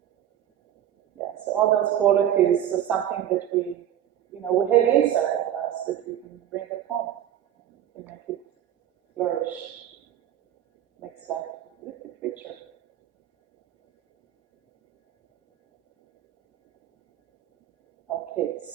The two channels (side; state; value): left; quieter; 10.8 dB